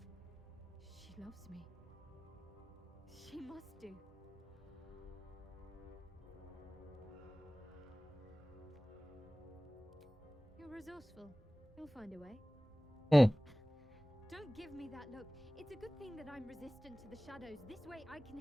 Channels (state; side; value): normal; both; correlation 0.98